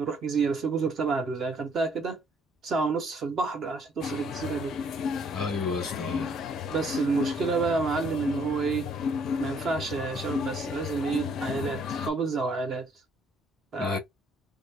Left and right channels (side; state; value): both; normal; correlation 0.64